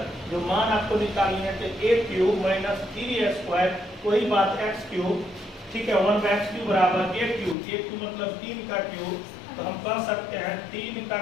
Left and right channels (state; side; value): drops out; right; at 7.6 s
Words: जो मान आपको निकालनी है तो a cube minus 3a square, कोई बात x क्यूब, ठीक है, 1/x क्यूब बराबर a क्यूब मतलब 3 का क्यूब, तो हम कह सकते हैं 3 का